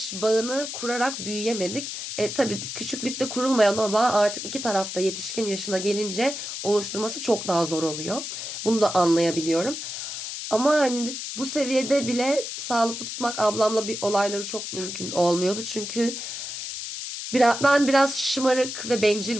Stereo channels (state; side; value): noise; left; hiss, 6 dB below the sound